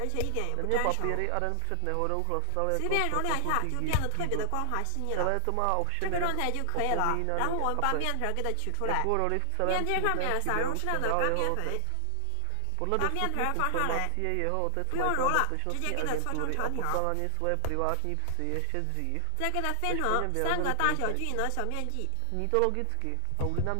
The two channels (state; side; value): different; both; correlation 0.00